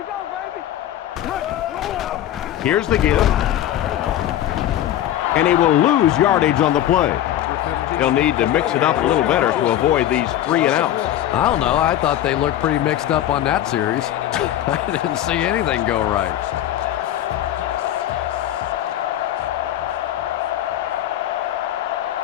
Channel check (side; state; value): right; quieter; 12.2 dB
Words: go, baby. Here's the give. And he will lose yardage on the play. He'll need to mix it up a little better to avoid these 3 and outs. I don't know. I thought they looked pretty mixed up on that series. I didn't see anything go right.